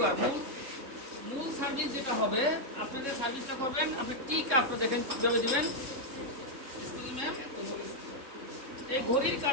মূল সার্ভিস যেটা হবে, আপনাদের সার্ভিসটা করবেন আপনি টি কাপটা দেখেন কিভাবে দিবেন। এই ঘড়ির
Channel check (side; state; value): left; late; 3.7 ms